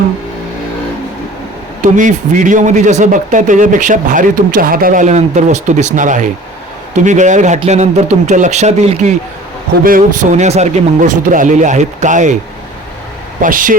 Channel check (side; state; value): both; normal; correlation 0.45